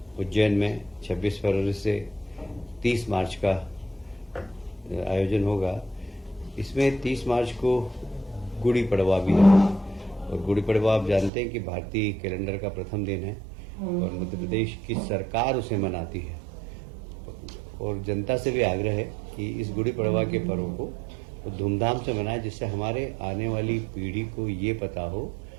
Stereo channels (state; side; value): drops out; left; at 11.3 s